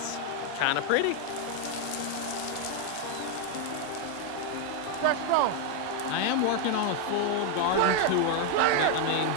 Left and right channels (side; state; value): both; different; correlation 0.01